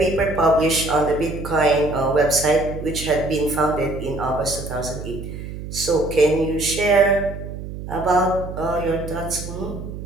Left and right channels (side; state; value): right; noise; hum, 9 dB below the sound